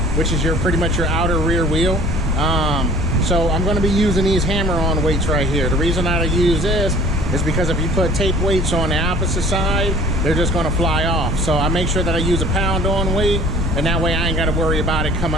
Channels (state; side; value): noise; right; rumble, 4 dB below the sound